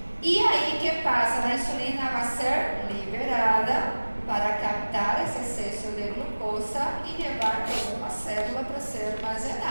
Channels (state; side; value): inverted; both; correlation -1.00